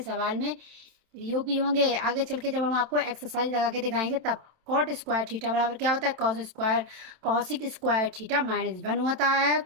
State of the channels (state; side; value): late; left; 27 ms